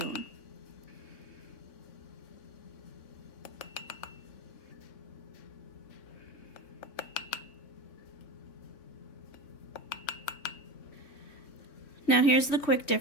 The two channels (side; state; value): right; late; 3.5 ms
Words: Now here's the quick